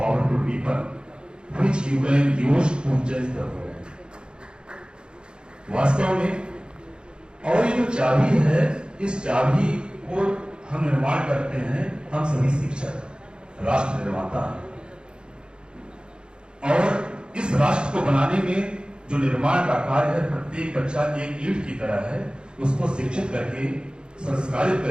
weapon which you can use to change the world. वास्तव में और ये जो चाबी है, इस चाबी को हम निर्माण करते हैं, हम सभी शिक्षक, राष्ट्र निर्माता हैं. और इस राष्ट्र को बनाने में जो निर्माण का कार्य है, प्रत्येक बच्चा एक ईंट की तरह है. उसको शिक्षित करके, संस्कारित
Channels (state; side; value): late; left; 0.051 ms